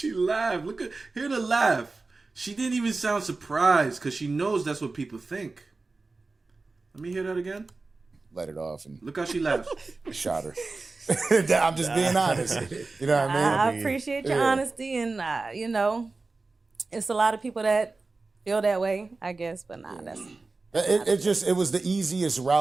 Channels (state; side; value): quieter; left; 3.7 dB